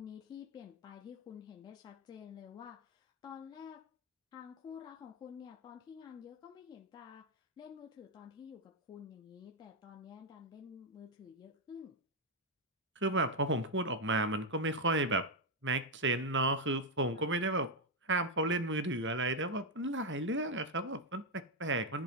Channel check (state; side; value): normal; both; correlation 0.03